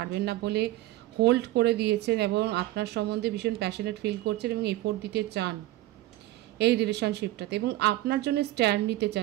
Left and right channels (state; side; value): quieter; left; 16.4 dB